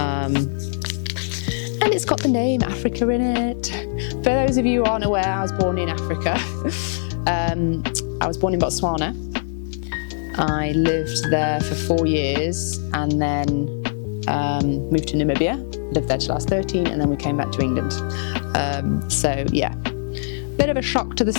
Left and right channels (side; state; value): right; silent; digital silence